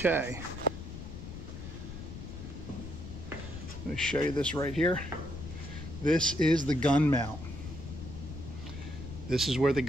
I'm going to show you this right here. This is the gun mount. This is where the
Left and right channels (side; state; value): left; noise; rumble, 10 dB below the sound